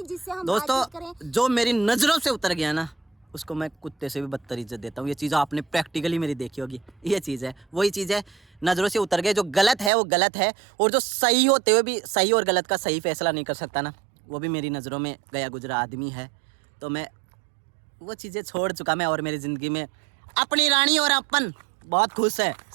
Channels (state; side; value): drops out; left; at 9.9 s